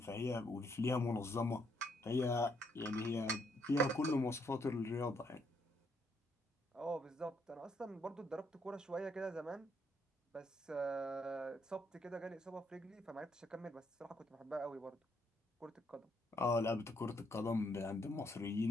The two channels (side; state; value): both; normal; correlation 0.73